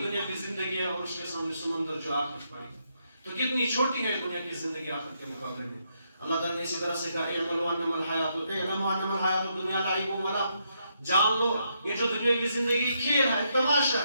دنیا کی زندگی ہے اور اس کے سامنے سمندر جو آخرت پڑی ہے. تو کتنی چھوٹی ہے دنیا کی زندگی آخرت کے مقابلے میں. اللہ تعالیٰ نے اسی طرح سے کہا اعملوا انما الحیات الدنیا لعب و لہو. جان لو یہ جو دنیا کی زندگی کھیل ہے، تماشا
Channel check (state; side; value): inverted; both; correlation -0.78